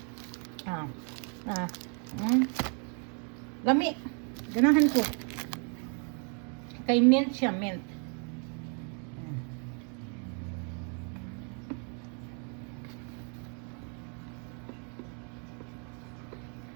Lami. Ganahan ko. Kay mint siya, mint.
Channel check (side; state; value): left; quieter; 39.9 dB